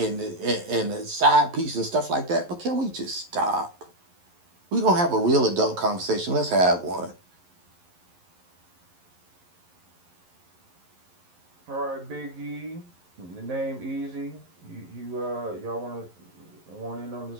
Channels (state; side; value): late; left; 11 ms